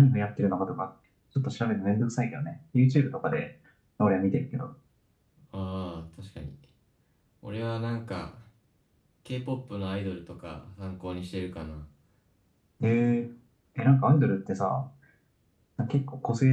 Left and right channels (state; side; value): identical; both; correlation 1.00